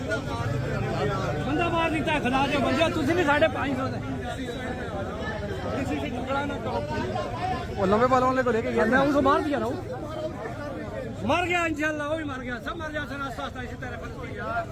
बंदा मार नहीं था खिला दे बंदा तुझे भी 550 दे किसी से झगड़ा ना करो वो लंबे बालों वाले को लेके गया मैं उसको मार दिया ना मर गया इंशाल्लाह वो भी मर गया सब मर जाते रास्ता रास्ता इसी तरह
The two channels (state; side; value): identical; both; correlation 1.00